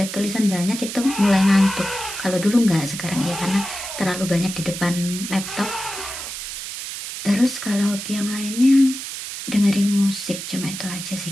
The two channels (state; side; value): noise; right; hiss, 8 dB below the sound